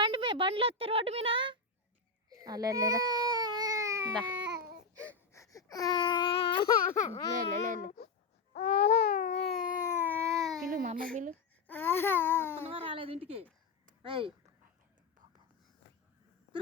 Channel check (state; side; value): quieter; right; 4.2 dB